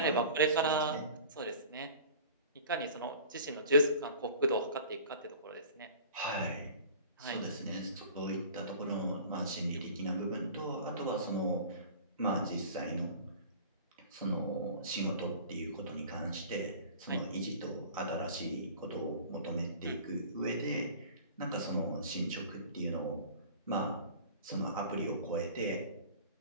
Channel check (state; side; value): inverted; both; correlation -0.42